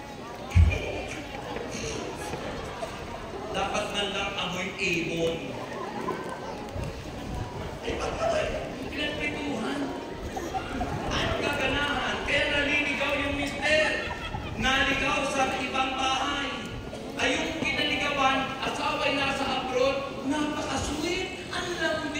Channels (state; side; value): identical; both; correlation 1.00